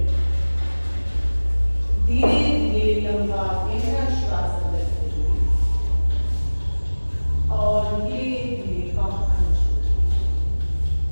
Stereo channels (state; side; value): inverted; both; correlation -1.00